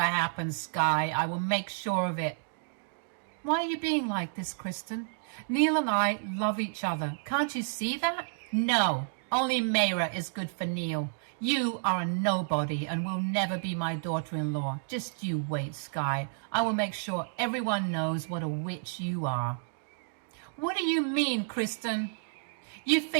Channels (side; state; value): left; silent; digital silence